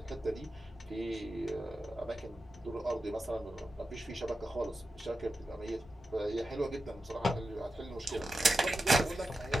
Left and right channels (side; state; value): both; normal; correlation 0.91